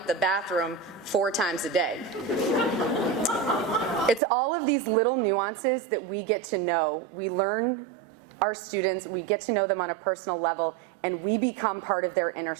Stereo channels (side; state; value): left; drops out; at 4.2 s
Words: the bathroom 4 times a day. It's all of these little nuances that we get to know. We learn our students, we get to know them on a personal level, and we become part of their inner